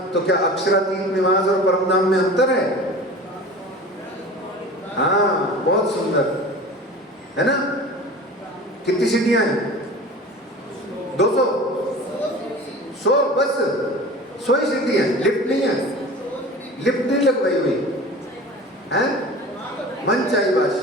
तो क्या अक्षरातीत निवास और परम धाम में अंतर है? हाँ, बहुत सुंदर है ना। कितनी सीढ़ियां हैं? 200 100 बस 100 ही सीढ़ी है, लिफ्ट नहीं है। लिफ्ट नहीं लगवाई हुई है, मन चाहिए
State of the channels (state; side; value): normal; both; correlation 0.38